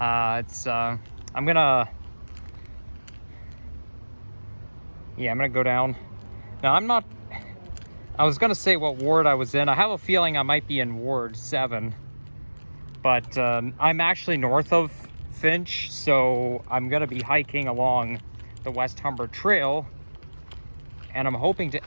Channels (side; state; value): both; inverted; correlation -1.00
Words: gonna go down. Now I was gonna say what ward I was in. I have a feeling I might be in Ward 7, but I'm actually north of Finch, so I'm gonna be hiking along the West Humber Trail, and I'm hoping